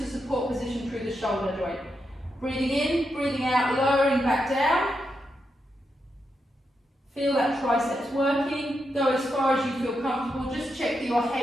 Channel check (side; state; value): both; normal; correlation 0.85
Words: a support position through the shoulder joint. Breathing in, breathing out, lowering back down. Feel that triceps working. Go as far as you feel comfortable. Just check that your